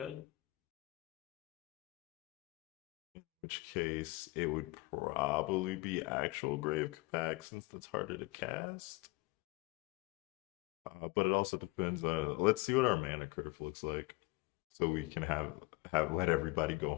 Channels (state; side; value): quieter; right; 23.3 dB